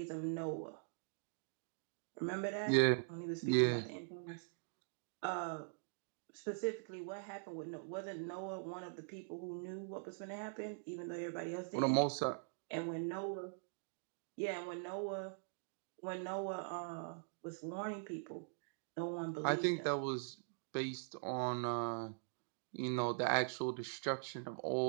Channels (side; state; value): left; silent; digital silence